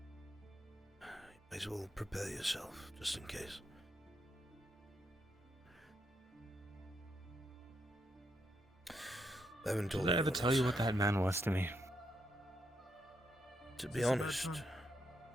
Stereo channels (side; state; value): both; normal; correlation 0.79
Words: You might as well prepare yourself, just in case. I haven't told Did I you ever what tell you what that man was to me? To be honest,